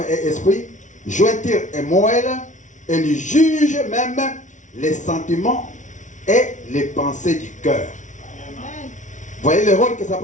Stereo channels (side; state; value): right; late; 0.36 ms